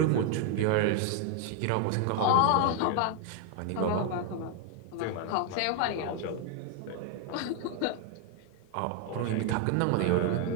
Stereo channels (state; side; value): different; both; correlation 0.01